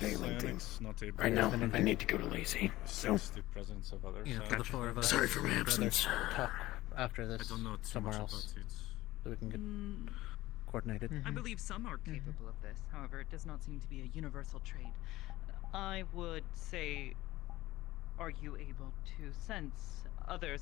thing. Not able Right now, I need to go to Lazy. So, sense the presence of others. yeah, for the 4 of us. Sorry for my we'd rather absence. Talk after this I don't know too somewhere much else, about it. so we can get coordinated. I believe some are capable of this. However, it does not seem to be a universal trait. I would say, are you able to sense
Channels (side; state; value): right; quieter; 17.2 dB